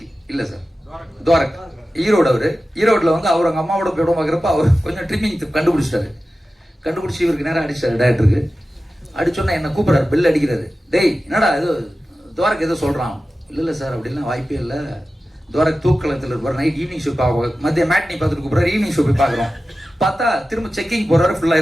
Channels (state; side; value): normal; both; correlation 0.94